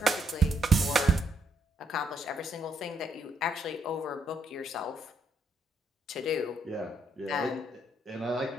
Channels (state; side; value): normal; both; correlation 0.74